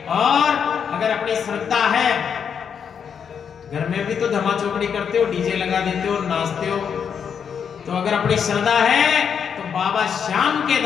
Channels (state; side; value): quieter; right; 7.2 dB